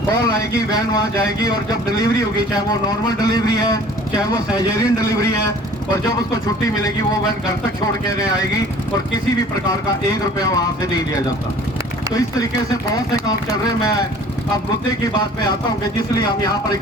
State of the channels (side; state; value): both; normal; correlation 0.49